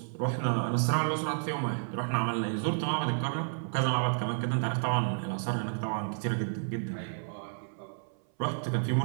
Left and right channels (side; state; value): left; silent; 57 dB below the other